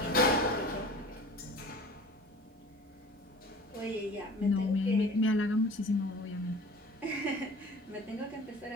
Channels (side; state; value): both; normal; correlation 0.43